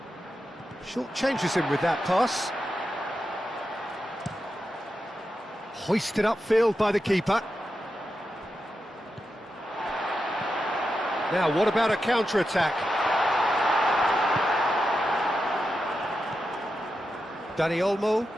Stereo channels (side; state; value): both; normal; correlation 0.88